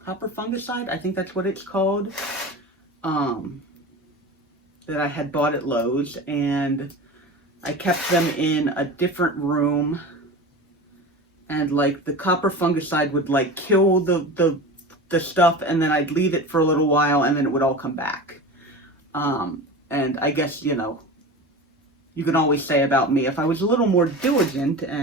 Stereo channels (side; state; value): both; normal; correlation 0.31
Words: fungicide, I think that's what it's called, that I had bought at Lowe's, and I kept them in a different room, and like the copper fungicide would like kill the stuff, and then I'd leave it for a little while, and then it would all come back. And I guess, you know, you can always say about me, if I was a little more diligent